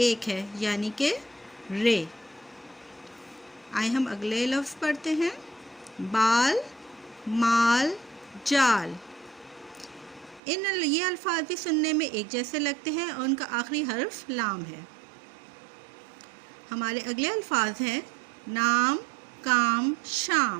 ہے، یعنی کہ رے۔ آئے ہم اگلے لفظ پڑھتے ہیں، بال، مال، جال۔ یہ الفاظ بھی سننے میں ایک جیسے لگتے ہیں اور ان کا آخری حرف لام ہے۔ ہمارے اگلے الفاظ ہیں نام، کام،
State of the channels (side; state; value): left; drops out; at 10.4 s